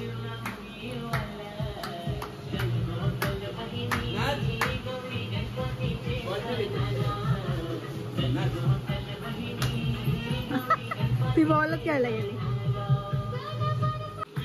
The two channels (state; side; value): identical; both; correlation 1.00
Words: ती बॉल खेळायला गेली.